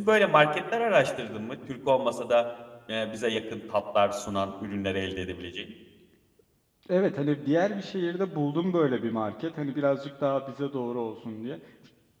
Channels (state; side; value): identical; both; correlation 1.00